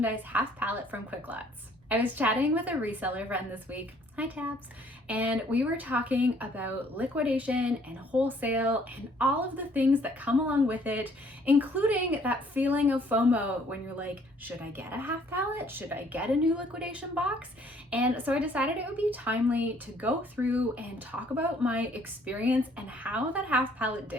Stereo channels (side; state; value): both; normal; correlation 0.61